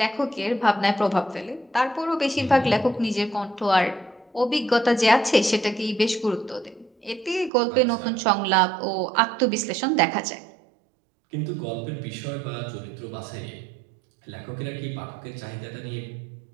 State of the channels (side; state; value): left; drops out; at 7.5 s